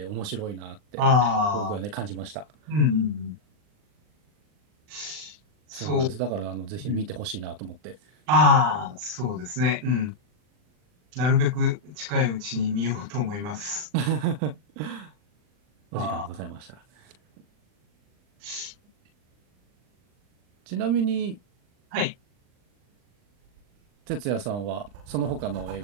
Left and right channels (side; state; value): left; late; 39 ms